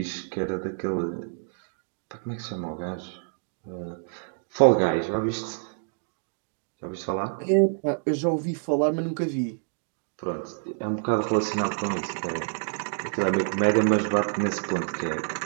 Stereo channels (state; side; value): silent; left; digital silence